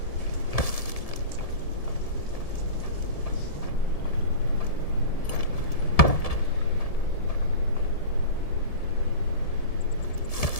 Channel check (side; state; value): right; late; 1.7 ms